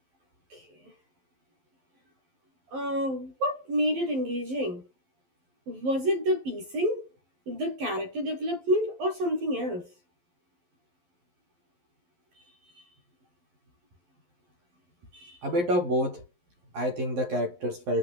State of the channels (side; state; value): left; late; 11 ms